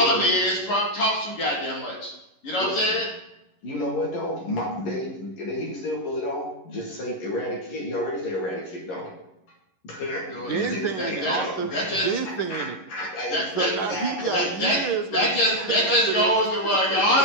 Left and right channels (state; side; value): late; right; 11 ms